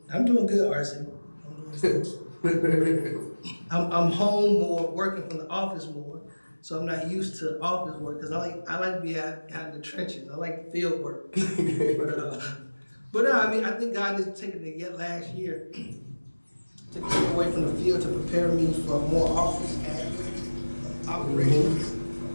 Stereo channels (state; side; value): inverted; both; correlation -1.00